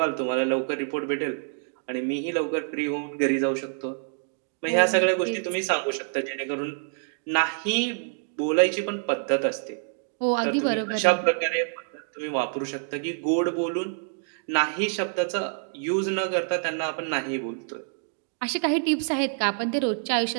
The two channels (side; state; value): left; silent; digital silence